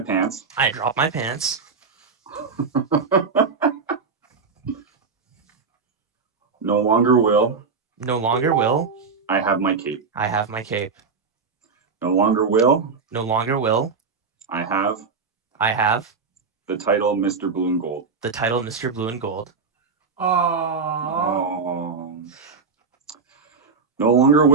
I drop my pants. No longer will. No longer will. I have my cape. I have my cape. No longer will. No longer will. I have. I have. The title Mr. Blue and Gold. The title Mr. Blue and Gold. Aww. Oh. No longer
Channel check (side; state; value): left; quieter; 5.0 dB